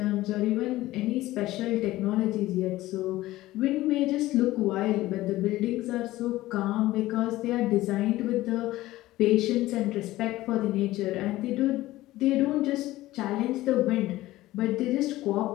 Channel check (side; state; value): right; quieter; 16.8 dB